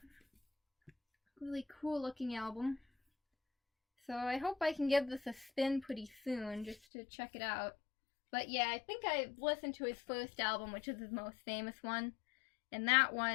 really cool looking album. So I hope I can give this a spin pretty soon just to check it out. But yeah, I think I've listened to his first album, which is his most famous one. And that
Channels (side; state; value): right; drops out; at 6.8 s